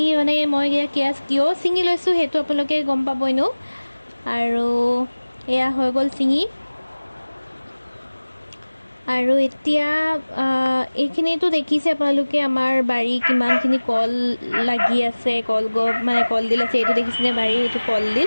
মানে মই কিয় ছিঙি লৈছোঁ সেইটো আপোনালোকে গম পাব এনেও আৰু এয়া হৈ গ'ল ছিঙি আৰু এতিয়া এইখিনিতো দেখিছে আপোনালোকে আমাৰ বাৰী কিমানখিনি কল লাগি আছে মানে কলডিল আছে এইটো দেখিছেনে বাৰী এইটো কলডিল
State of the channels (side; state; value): both; inverted; correlation -1.00